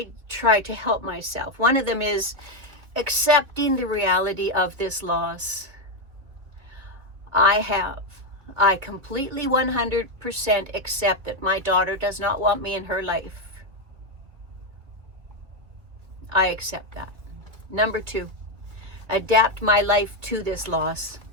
try to help myself. One of them is accepting the reality of this loss. I completely 100% accept that my daughter does not want me in her life. I accept that. Number 2, adapt my life to this loss.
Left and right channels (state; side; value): late; left; 2.4 ms